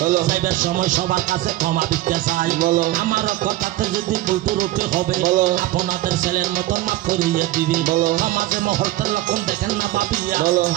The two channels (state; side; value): quieter; left; 16.3 dB